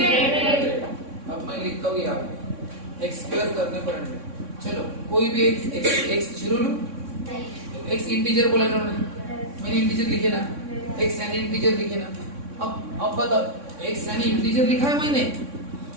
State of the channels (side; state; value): left; late; 3.6 ms